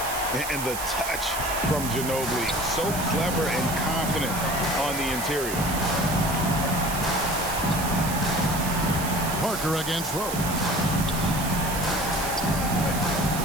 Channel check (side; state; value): right; noise; hiss, 7 dB below the sound